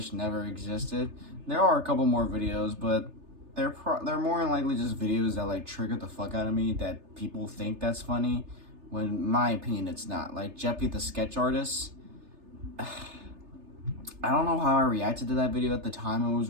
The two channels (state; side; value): late; left; 3.3 ms